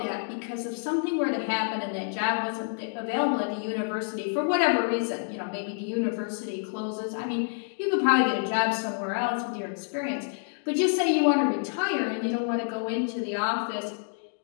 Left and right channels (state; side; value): silent; right; digital silence